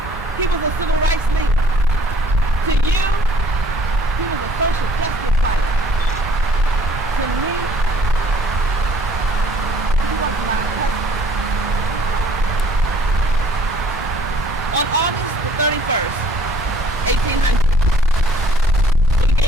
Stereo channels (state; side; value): normal; both; correlation 0.57